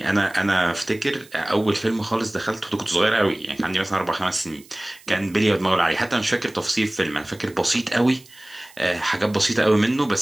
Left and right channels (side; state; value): right; noise; hiss, 24 dB below the sound